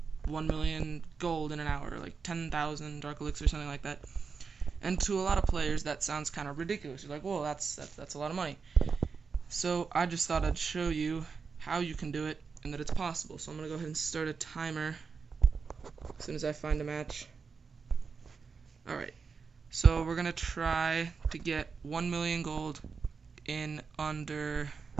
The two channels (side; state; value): left; quieter; 5.3 dB